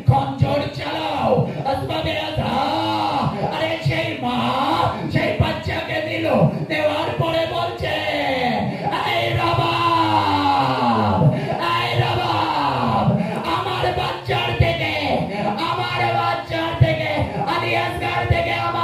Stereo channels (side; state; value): both; identical; correlation 1.00